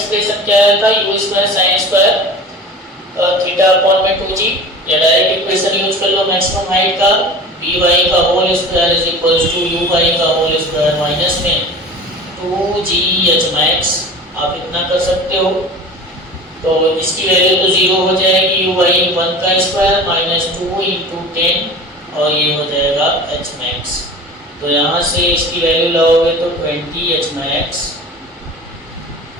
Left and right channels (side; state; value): both; normal; correlation 0.37